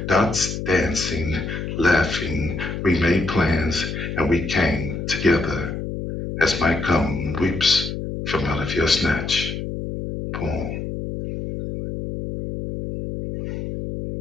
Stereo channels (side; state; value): left; noise; hum, 5 dB below the sound